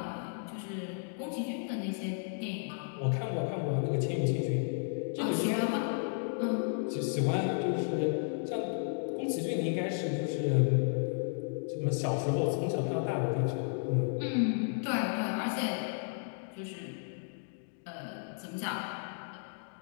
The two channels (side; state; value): right; silent; digital silence